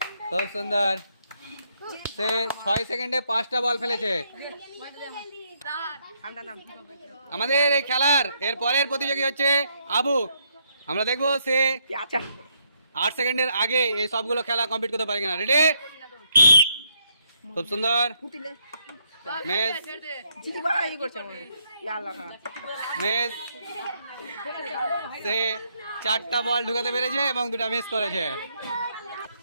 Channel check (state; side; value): inverted; both; correlation -0.75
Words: খুব সুন্দর, সে 6 সেকেন্ডে 5টা বল ফেলেছে। আমাদের এই খেলার এরপরের প্রতিযোগী হচ্ছে আবু। আমরা দেখব সে 8 সেকেন্ডের আগে এই সবগুলো খেলা কমপ্লিট করতে পারে কিনা। রেডি? খুব সুন্দর, সে 4টা বল ঢুকাতে পেরেছে এবং 2টা মিস করেছে।